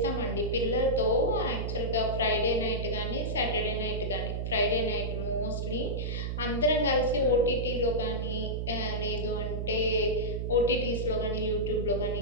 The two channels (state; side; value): noise; right; hum, 2 dB below the sound